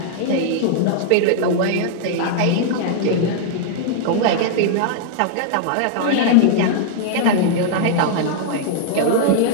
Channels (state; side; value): different; both; correlation -0.01